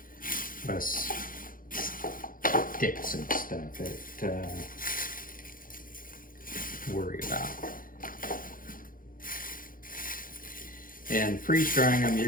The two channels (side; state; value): right; late; 0.40 ms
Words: less sticks and stuff that worry about. And freeze drying them,